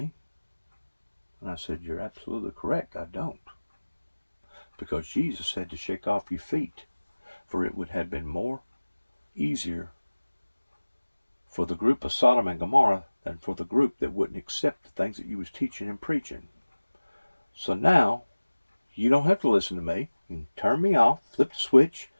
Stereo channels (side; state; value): both; inverted; correlation -1.00